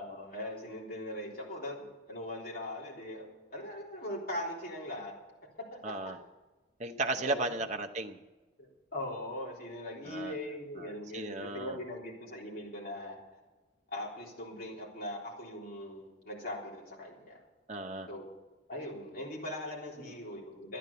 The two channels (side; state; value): both; normal; correlation -0.06